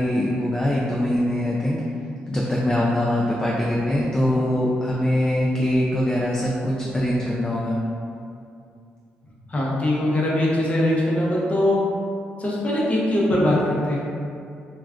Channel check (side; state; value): both; normal; correlation 0.85